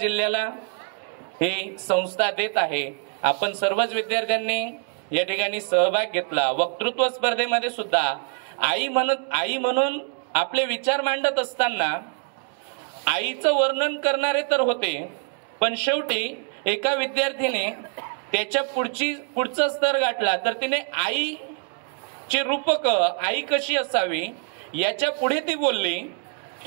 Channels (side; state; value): left; quieter; 39.0 dB